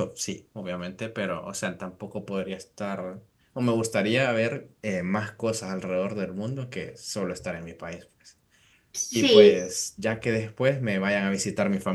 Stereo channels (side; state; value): both; identical; correlation 1.00